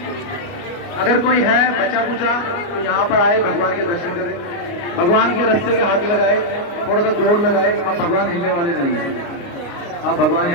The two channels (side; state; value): right; late; 29 ms